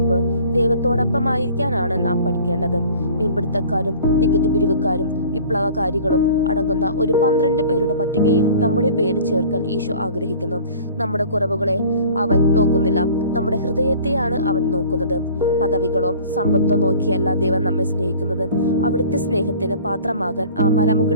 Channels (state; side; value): inverted; both; correlation -0.46